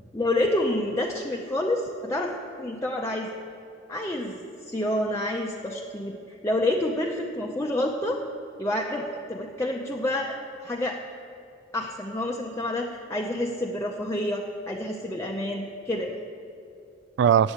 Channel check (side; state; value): both; normal; correlation 0.45